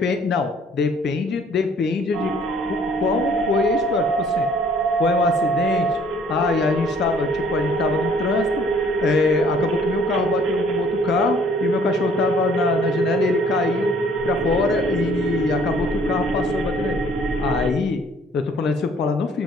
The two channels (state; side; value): normal; both; correlation 0.58